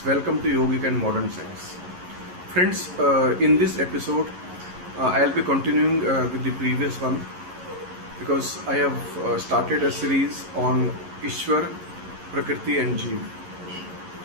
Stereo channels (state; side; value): late; left; 11 ms